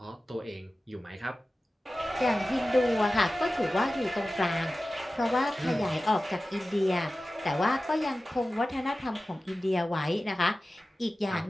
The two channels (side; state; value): both; normal; correlation 0.95